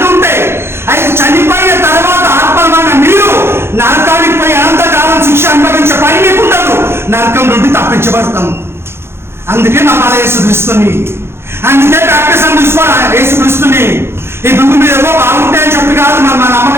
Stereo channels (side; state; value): left; late; 0.12 ms